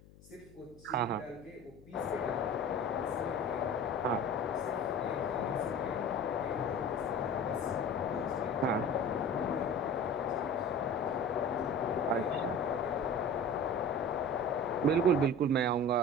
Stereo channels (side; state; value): left; noise; hum, 23 dB below the sound